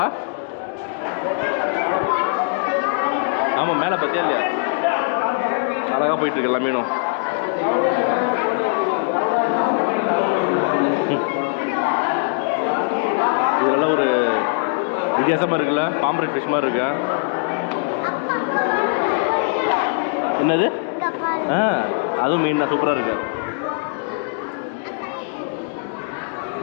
ஆமாம் மேலே பார்த்தியா இல்லையா அழகாக போயிட்டுருக்கு எல்லா மீனும். இதெல்லாம் ஒரு வித்தியாசமாக இருக்குல்ல பாம்பரேட் ஃபிஷ் மாதிரி இருக்கு. என்னது அதுவும் மீன் தான் சூப்பராக இருக்கு.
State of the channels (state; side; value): silent; right; digital silence